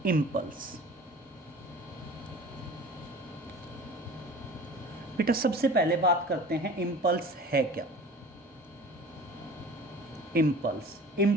इम्पल्स। बेटा सबसे पहले बात करते हैं इम्पल्स है क्या।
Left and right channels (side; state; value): both; normal; correlation 0.42